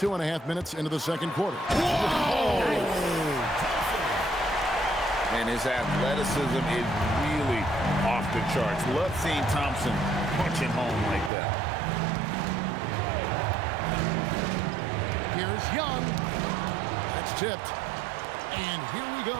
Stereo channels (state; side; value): drops out; left; at 11.3 s